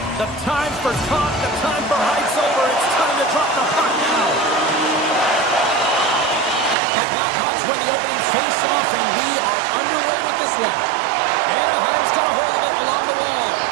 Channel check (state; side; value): drops out; left; at 6.8 s